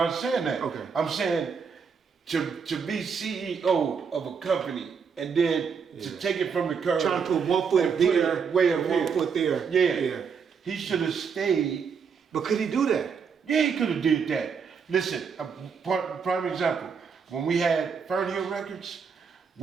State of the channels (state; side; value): quieter; left; 6.1 dB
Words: saying that. Okay. I'm saying to be CEO of a company and then to take it from the curb. Trying to put 1 foot there, way and 1 foot there. Yeah. He should have stayed. But could he do that? Yeah, he could have did that. Listen, a prime example. When we had Fernhill Records,